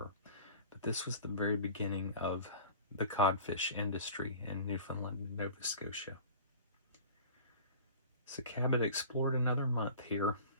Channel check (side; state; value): both; inverted; correlation -0.41